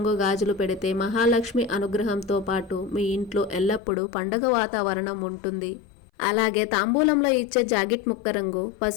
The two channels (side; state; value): right; drops out; at 3.8 s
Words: గాజులు పెడితే మహాలక్ష్మి అనుగ్రహంతో పాటు మీ ఇంట్లో ఎల్లప్పుడూ పండగ వాతావరణం ఉంటుంది. అలాగే తాంబూలంలో ఇచ్చే జాకెట్ ముక్క రంగు